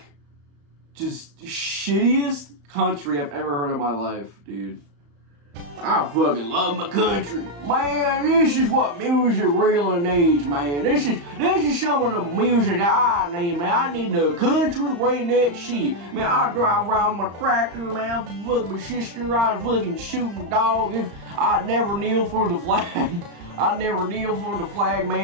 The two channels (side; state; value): left; late; 35 ms